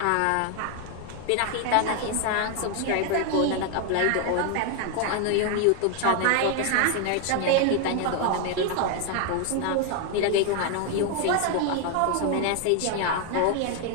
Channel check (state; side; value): different; both; correlation 0.01